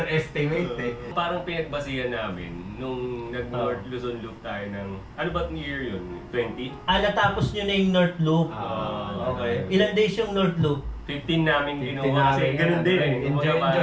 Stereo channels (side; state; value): both; identical; correlation 1.00